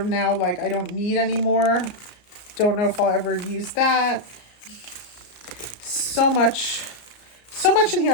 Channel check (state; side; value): late; right; 34 ms